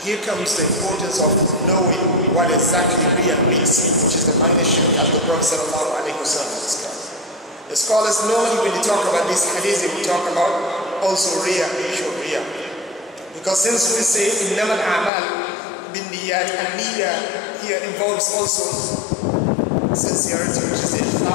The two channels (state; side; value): drops out; right; at 15.1 s